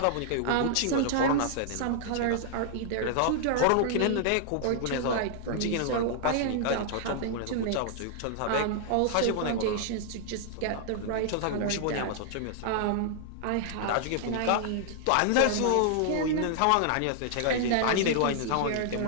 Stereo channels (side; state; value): both; different; correlation -0.01